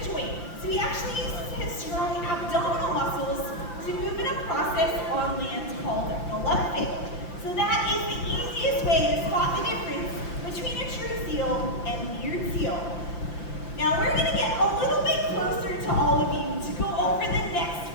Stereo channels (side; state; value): right; late; 5.8 ms